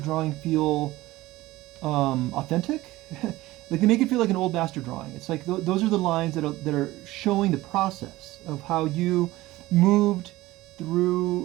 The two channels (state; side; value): quieter; left; 18.0 dB